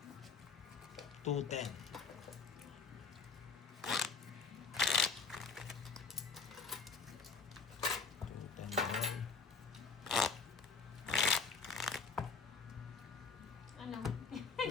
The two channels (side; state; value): right; quieter; 5.2 dB